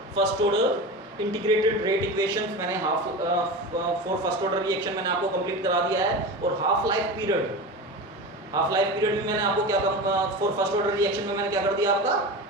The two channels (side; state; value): both; normal; correlation 0.27